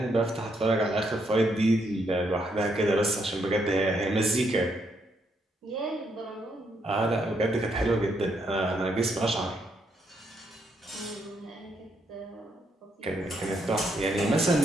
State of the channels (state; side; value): normal; both; correlation 0.76